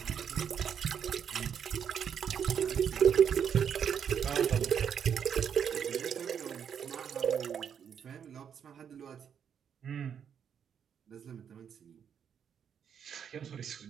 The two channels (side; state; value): left; quieter; 8.0 dB